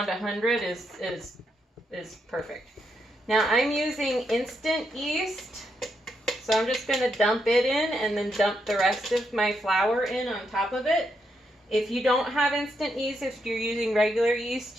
100 is perfect. Now I'm using instant yeast, so I'm just going to dump it in and then dump the rest of my flour in on top of it. If you don't have instant yeast, if you're using regular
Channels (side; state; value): both; normal; correlation 0.80